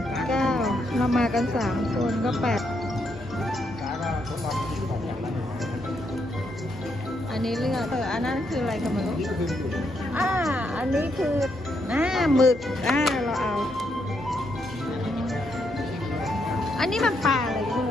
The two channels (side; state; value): both; normal; correlation 0.78